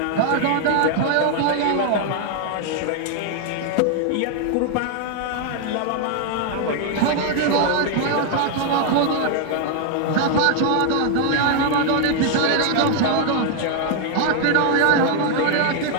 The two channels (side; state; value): both; different; correlation 0.00